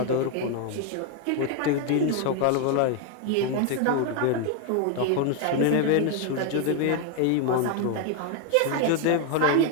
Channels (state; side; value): different; both; correlation 0.01